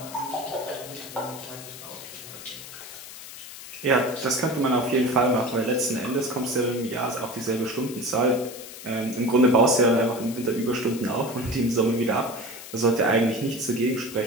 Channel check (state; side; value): noise; left; hiss, 13 dB below the sound